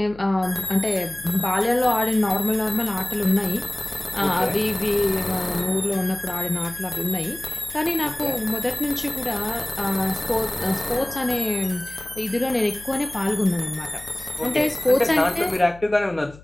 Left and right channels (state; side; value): noise; left; hum, 21 dB below the sound